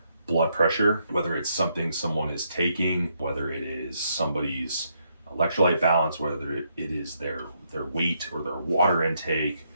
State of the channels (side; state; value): both; inverted; correlation -0.76